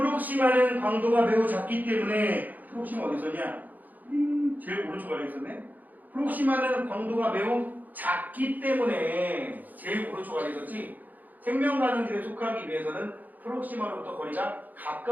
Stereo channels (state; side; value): late; left; 0.083 ms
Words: 광도가 매우 작기 때문에 프록시마 어디 있었냐? 제일 오른쪽 아래 있었네. 프록시마는 광도가 매우 작기 때문에 제일 오른쪽 아래 있었지. 생명가능질에 속하기 위해서는 프록시마로부터 거리가